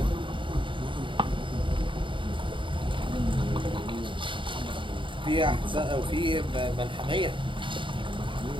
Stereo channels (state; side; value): late; left; 0.24 ms